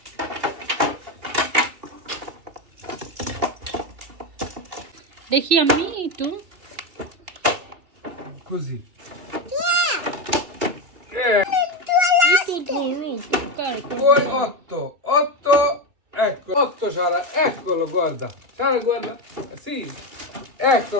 দেখি আমি একটু Così. একটু ধরো, Poi 8, ecco, 8 Sara, eccolo, guarda. Sara, guarda, sì,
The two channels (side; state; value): left; late; 2.8 ms